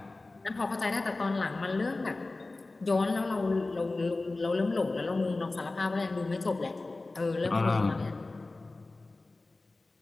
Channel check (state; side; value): quieter; right; 3.2 dB